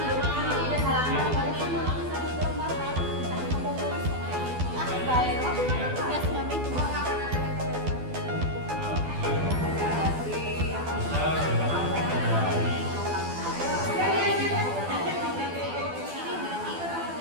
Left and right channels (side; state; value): left; late; 12 ms